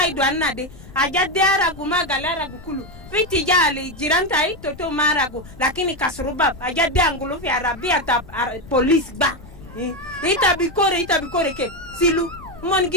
anna de ajade aragu magalara gukulu fiti jali jirantai toto marago lakini kasruba ajade angulu fi arabia ta police ba ita bikore ke silu mon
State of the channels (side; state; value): left; noise; rumble, 18 dB below the sound